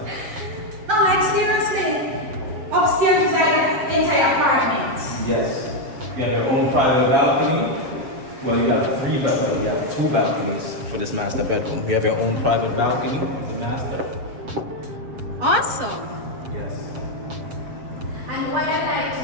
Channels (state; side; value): late; left; 7.4 ms